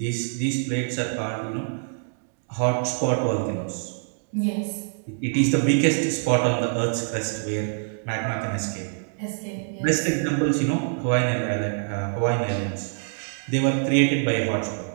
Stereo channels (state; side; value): silent; left; digital silence